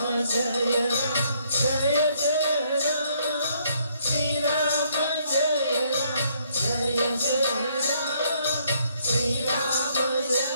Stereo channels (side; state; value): both; inverted; correlation -0.68